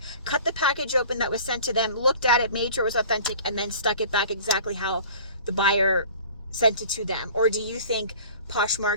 cut the package open that was sent to them, looked at it, made sure it was authentic, and then stuck it back exactly how the buyer sent it to them? Or do you think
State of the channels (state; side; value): inverted; both; correlation -0.45